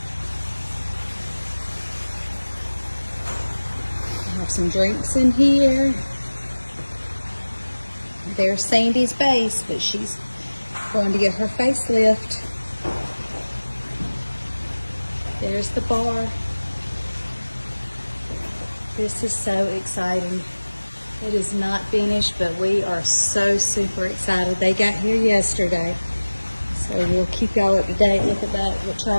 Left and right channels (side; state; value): both; inverted; correlation -1.00